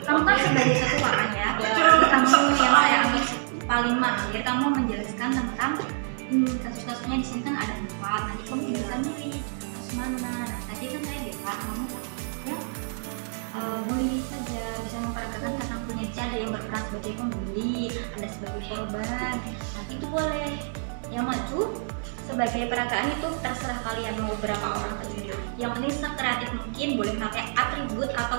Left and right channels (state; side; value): silent; left; digital silence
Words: Kamu kan sebagai ketua kan ya. Jadi kamu yang saya ambil paling mahir, kamu menjelaskan tentang kasus-kasusnya di sini kan ada 4. Nanti kamu bisa milih kasus mana. Nah, tadi kan saya bilang kamu ya boleh saja bisa memperagakan tentang punya ada yang berperan sebagai pembeli, ada sebagai korban. Nanti itu boleh. Yang maju sebagai peragaan itu terserah kalian mau berapa orang saja. Yang penting sekreatif mungkin, boleh pakai atribut